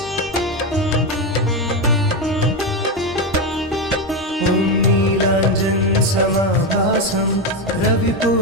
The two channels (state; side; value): normal; both; correlation 0.11